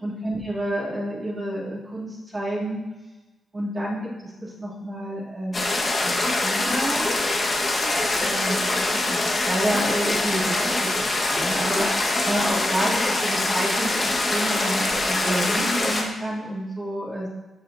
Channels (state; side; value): normal; both; correlation 0.88